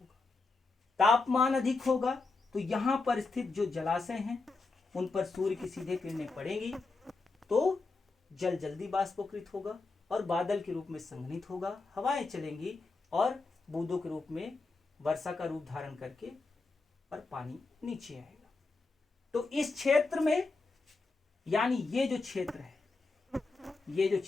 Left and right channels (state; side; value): quieter; right; 3.7 dB